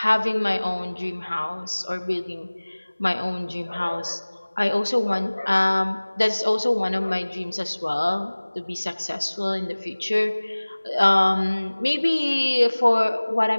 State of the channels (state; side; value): inverted; both; correlation -1.00